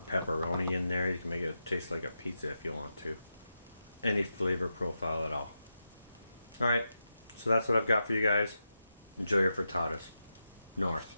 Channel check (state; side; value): inverted; both; correlation -0.88